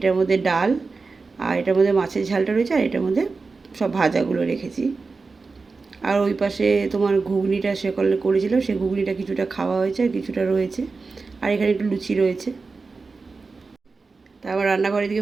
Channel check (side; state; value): left; quieter; 4.2 dB